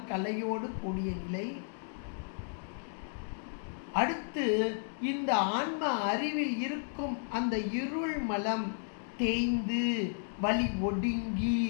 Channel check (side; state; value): right; silent; digital silence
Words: கலையோடு கூடிய நிலை. அடுத்து இந்த ஆன்ம அறிவில் இருக்கும் அந்த இருள் மலம் தேய்ந்து வலி ஒடுங்கி